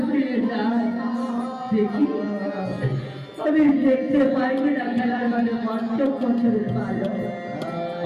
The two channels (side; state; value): both; identical; correlation 1.00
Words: ফিরে যাই, দেখি আমি দেখতে পাই না খেলার মাঠে ৫ম বছরের বালক।